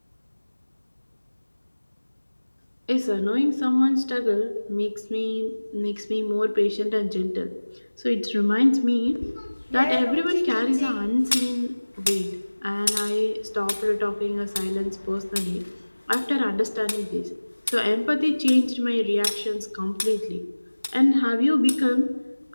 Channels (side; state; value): both; inverted; correlation -1.00